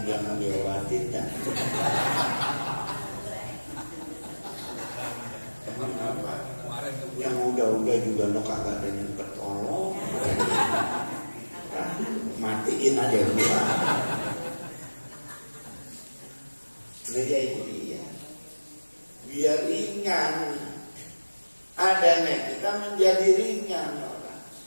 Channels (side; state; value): both; inverted; correlation -1.00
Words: jangan diobatin ya. Emang apa? Yang udah-udah juga no kagak ada yang ketolong. Matiin aja dulu. Nah ya itu dia. Biar ringan. Adanya kita menjadi ringan orang.